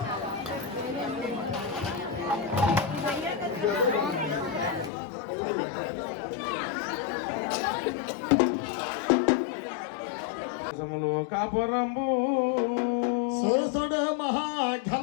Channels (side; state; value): right; drops out; at 4.9 s